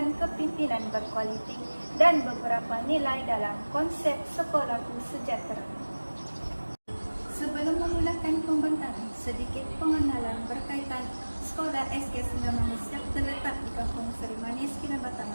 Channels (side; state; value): both; inverted; correlation -1.00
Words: kepimpinan berkualiti dan beberapa nilai dalam konsep sekolahku sejahtera. Sebelum memulakan pembentangan, sedikit pengenalan berkaitan sekolah SK Singgamanis yang terletak di Kampung Seri Manis,